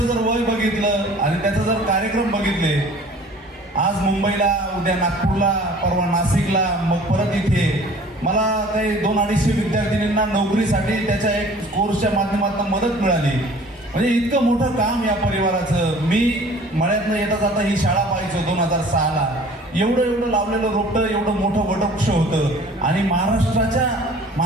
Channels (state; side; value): normal; both; correlation 0.49